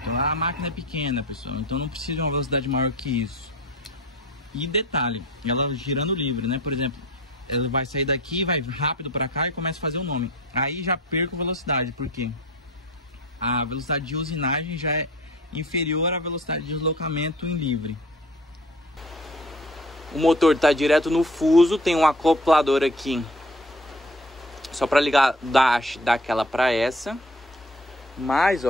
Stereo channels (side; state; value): both; normal; correlation 0.45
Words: A máquina é pequena, pessoal, então não precisa de uma velocidade maior que isso. E detalhe, ela girando livre, né? Por exemplo, ela vai sair daqui, vai rápido para cá e começa a fazer o nome. Aí já perco velocidade, porque a velocidade de usinagem já é inferior à velocidade de deslocamento em livre. O motor está direto no fuso, tem um acoplador aqui só para ligar da haste daquela para essa. Mas